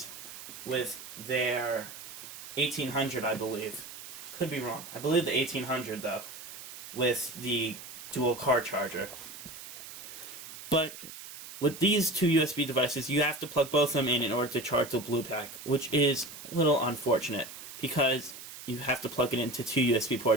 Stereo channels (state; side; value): noise; right; hiss, 13 dB below the sound